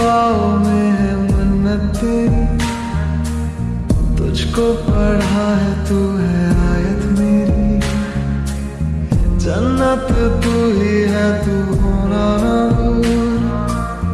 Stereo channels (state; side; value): identical; both; correlation 1.00